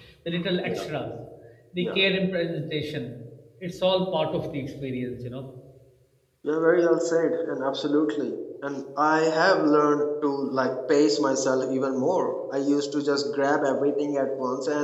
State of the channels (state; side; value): identical; both; correlation 1.00